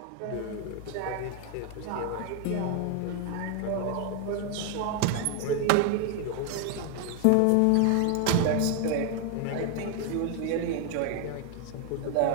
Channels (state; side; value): different; both; correlation 0.01